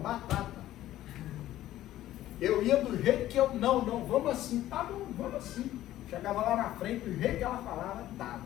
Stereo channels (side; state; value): right; quieter; 13.9 dB